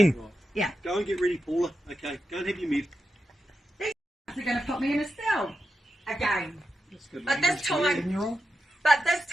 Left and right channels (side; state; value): both; normal; correlation 0.89